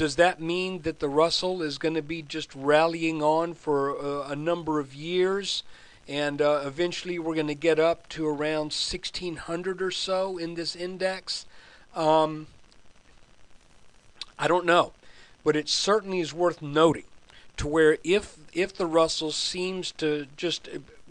that mean that the Russell is going to be just rallying on for a number of years, and eventually we're going to get up to around 1,600 or so in this index? I don't know, but it certainly is worth noting to where if the Russell seems to just,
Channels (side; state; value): both; identical; correlation 1.00